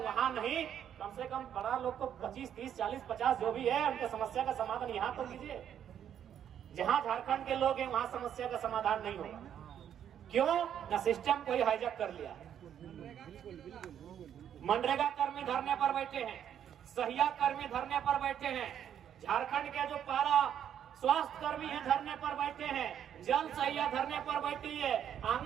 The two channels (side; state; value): left; quieter; 9.5 dB